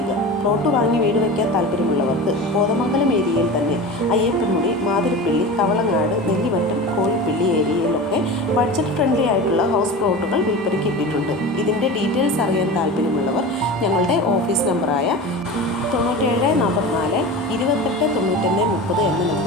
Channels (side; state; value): both; normal; correlation 0.30